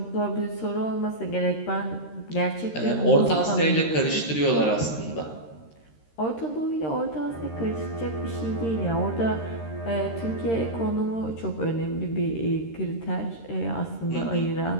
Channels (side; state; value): right; late; 13 ms